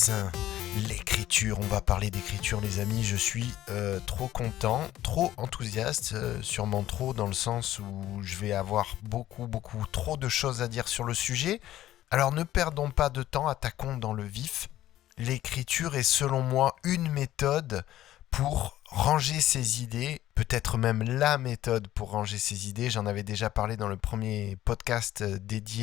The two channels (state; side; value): quieter; right; 13.7 dB